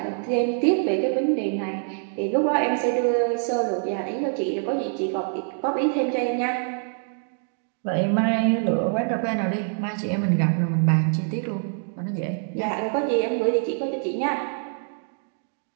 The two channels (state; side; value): silent; left; 62 dB below the other